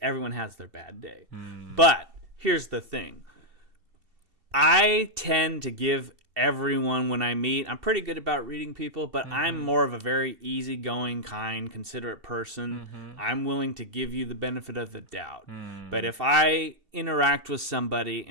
everyone has their bad day. But here's the thing. I tend to give everyone when I meet, I'm pretty good about reading people, but I'm more of a very easygoing, kind, considerate person. I'm willing to give you the benefit of the doubt. But if I interact with somebody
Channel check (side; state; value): left; late; 2.7 ms